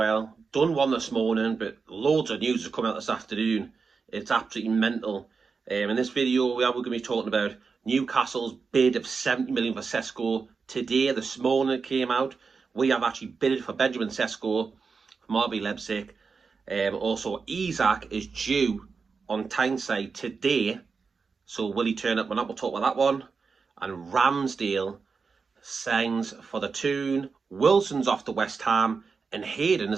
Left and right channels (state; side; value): quieter; left; 5.0 dB